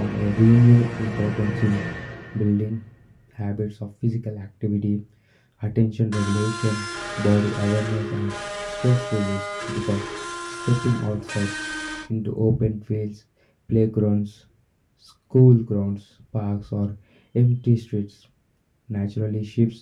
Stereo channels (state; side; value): identical; both; correlation 1.00